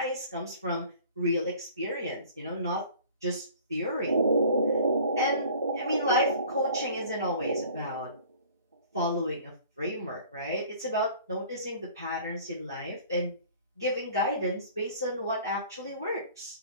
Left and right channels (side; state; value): both; inverted; correlation -0.48